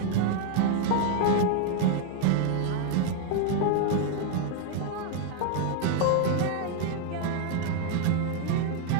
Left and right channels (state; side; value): different; both; correlation 0.00